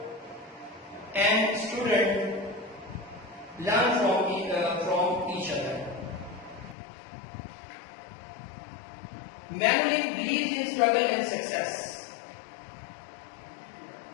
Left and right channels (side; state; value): right; drops out; at 6.8 s